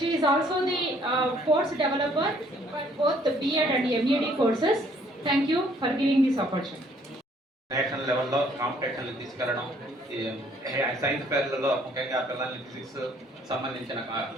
is also the course developer for both the B.Ed and M.Ed courses. Thank you for giving this opportunity. National లెవెల్లో కాంపిటీషన్లు తీసుకెళ్ళడం, science ఫెయిర్లలో ముఖ్యంగా పిల్లల్ని physics సంబంధించిన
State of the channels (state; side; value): normal; both; correlation 0.62